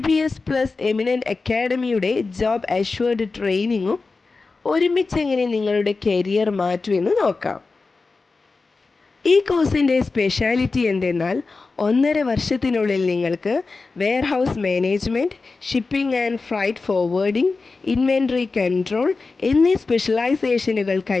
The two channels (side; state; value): right; quieter; 4.0 dB